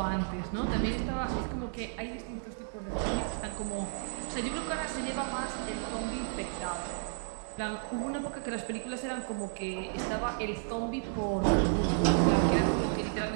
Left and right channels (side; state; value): left; silent; digital silence